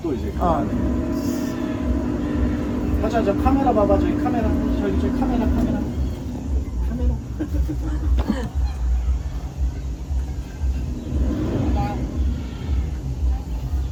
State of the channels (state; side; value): identical; both; correlation 1.00